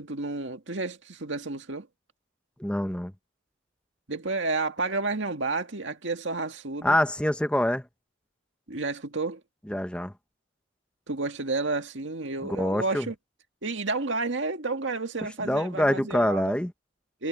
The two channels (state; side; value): normal; both; correlation 0.41